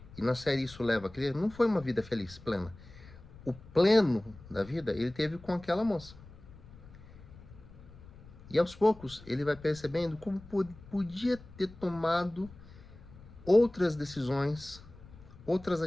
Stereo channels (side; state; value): left; noise; rumble, 19 dB below the sound